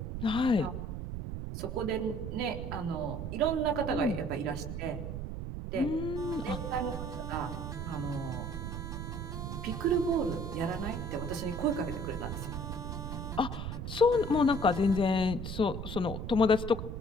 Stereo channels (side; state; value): right; noise; rumble, 5 dB below the sound